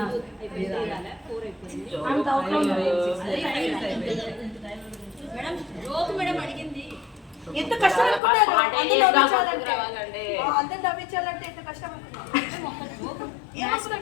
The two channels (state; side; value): drops out; right; at 8.2 s